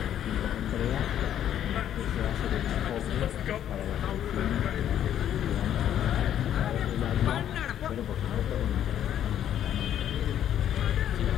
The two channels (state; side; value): quieter; right; 10.5 dB